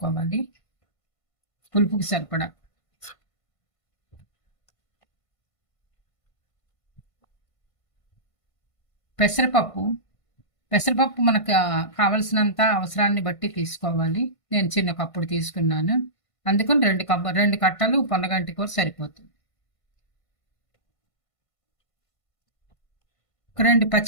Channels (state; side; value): late; right; 1.5 ms